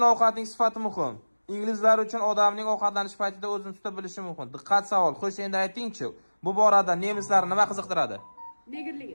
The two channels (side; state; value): both; inverted; correlation -1.00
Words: ovqatning sifati muhim. Inglizlar uchun odamning ovqatlanish paytida o'zini tuta bilishi muhim. Diqqat savol. Xo'sh, endi ayting-chi, bu borada nemislarni nima qiziqtiradi? Negerligi.